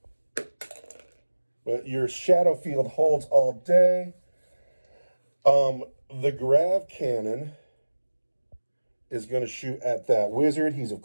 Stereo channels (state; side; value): inverted; both; correlation -1.00